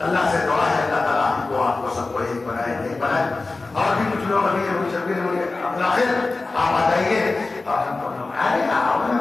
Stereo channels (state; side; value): quieter; right; 3.5 dB